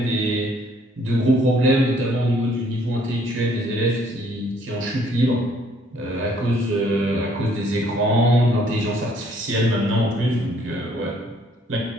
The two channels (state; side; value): normal; both; correlation 0.63